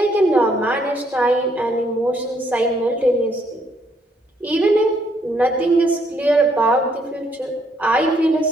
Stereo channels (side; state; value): both; normal; correlation 0.70